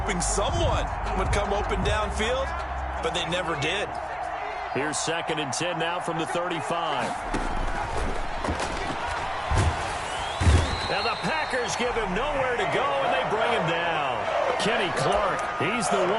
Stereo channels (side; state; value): both; identical; correlation 1.00